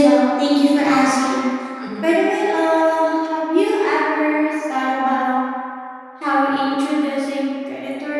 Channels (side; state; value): both; identical; correlation 1.00